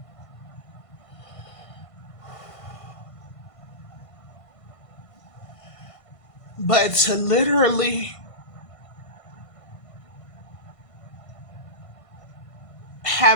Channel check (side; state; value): right; late; 1.5 ms